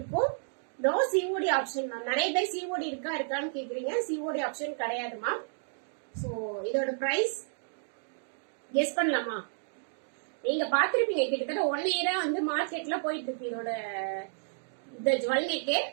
No COD option ma'am. நிறைய பேர் சிஓடி இருக்கான்னு கேக்குறீங்க, சிஓடி ஆப்ஷன் கிடையாது மேம். சோ இதோட பிரைஸ் கெஸ் பண்ணலாமா? நீங்க பாத்திருப்பீங்க, கிட்டத்தட்ட 1 இயரா வந்து மார்க்கெட்ல போயிட்டு இருக்கு இதோட இந்த ஜுவல் நெக்.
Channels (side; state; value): left; silent; digital silence